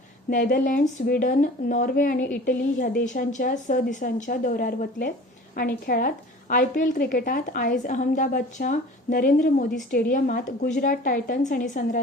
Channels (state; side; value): normal; both; correlation 0.43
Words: नेदरलँड्स, स्वीडन, नॉर्वे आनी इटली ह्या देशांच्या 6 दिसांच्या दौऱ्यार वतले. आनी खेळांत IPL क्रिकेटात आयज अहमदाबादच्या नरेंद्र मोदी स्टेडियमात गुजरात टायटन्स आनी